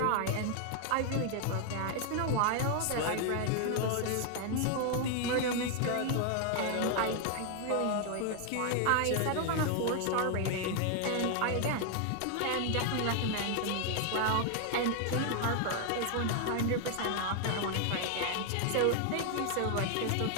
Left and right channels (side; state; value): both; different; correlation 0.00